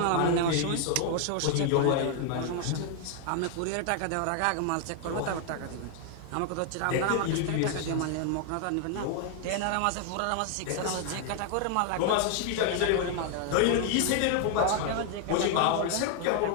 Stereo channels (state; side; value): different; both; correlation 0.00